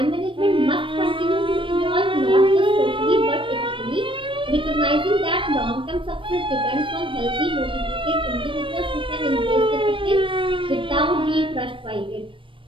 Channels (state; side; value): late; left; 0.25 ms